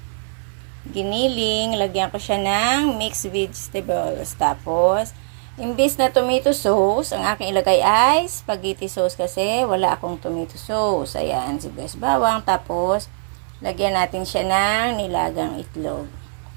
Giniling. Lagyan ko siya ng mixed vegetables. Tapos, imbis na tomato sauce, ang aking ilagay ay spaghetti sauce kasi wala akong tomato sauce. Ayan, sibuyas bawang. Tapos, lagyan natin siya ng nilagang itlog.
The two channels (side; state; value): left; silent; 63 dB below the other